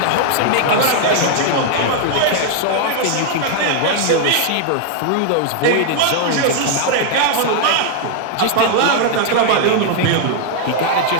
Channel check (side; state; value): both; different; correlation 0.00